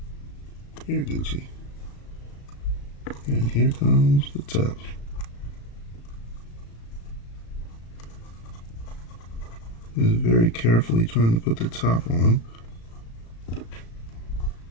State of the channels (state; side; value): late; right; 35 ms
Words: Here, Gucci. And here comes the top. Is very carefully trying to put the top on.